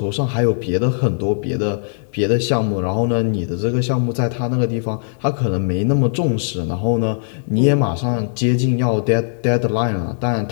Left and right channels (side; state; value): right; silent; digital silence